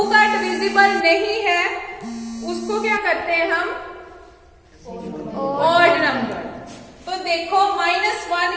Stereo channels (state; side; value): identical; both; correlation 1.00